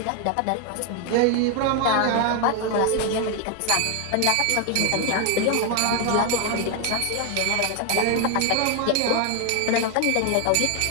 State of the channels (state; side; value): different; both; correlation 0.01